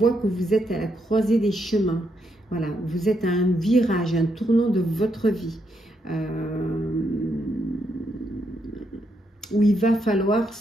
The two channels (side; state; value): both; normal; correlation 0.78